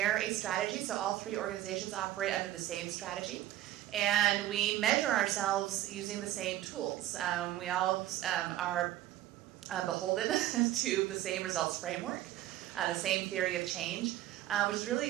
a strategy, so all three organizations operate under the same strategy. And we measure ourselves using the same tools. We all are beholden to the same results framework, the same theory of change, which is really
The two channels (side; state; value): left; quieter; 14.1 dB